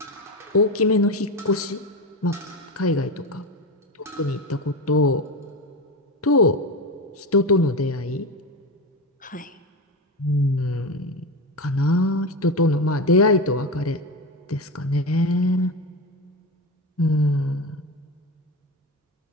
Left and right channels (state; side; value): normal; both; correlation 0.20